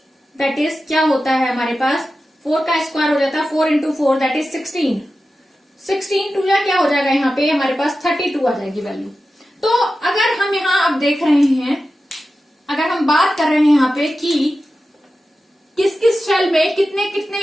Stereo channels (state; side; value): normal; both; correlation 0.93